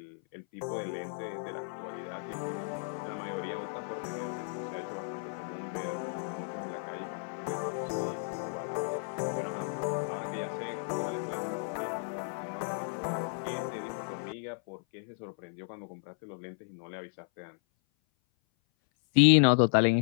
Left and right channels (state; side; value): silent; right; 55 dB below the other